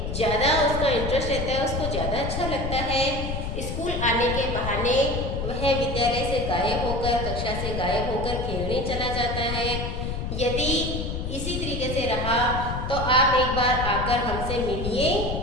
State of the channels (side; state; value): left; noise; rumble, 3 dB below the sound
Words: ज़्यादा उसका इंटरेस्ट रहता है, उसको ज़्यादा अच्छा लगता है। स्कूल आने के बहाने वह विद्यालय से गायब होकर, कक्षा से गायब होकर खेलने चला जाता है। यदि इसी तरीके से रहा तो आप एक बार आकर हमसे मिलिए।